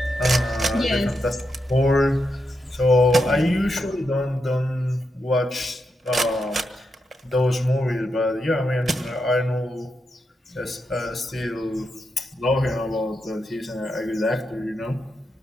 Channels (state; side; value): normal; both; correlation 0.85